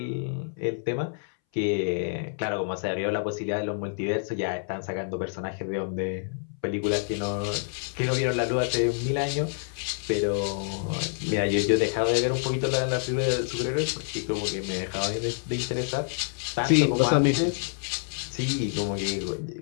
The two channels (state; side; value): silent; right; 60 dB below the other